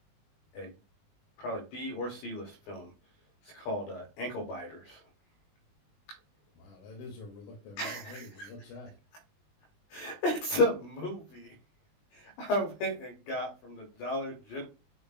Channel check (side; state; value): right; late; 20 ms